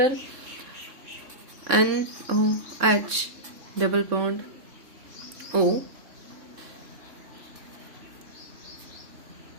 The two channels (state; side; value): late; left; 3.6 ms